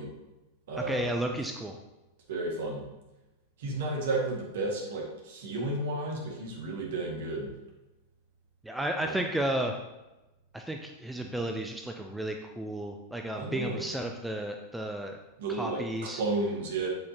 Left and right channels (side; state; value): both; normal; correlation 0.28